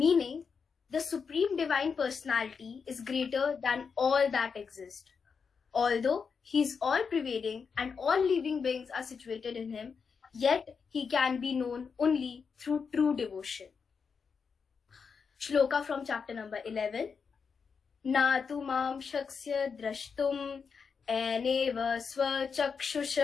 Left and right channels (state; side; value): quieter; right; 5.8 dB